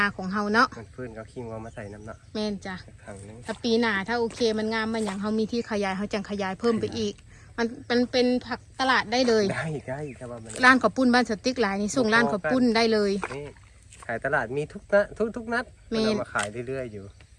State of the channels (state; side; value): identical; both; correlation 1.00